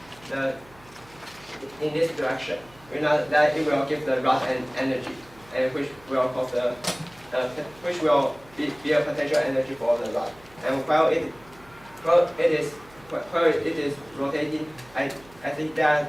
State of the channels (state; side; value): noise; right; hum, 25 dB below the sound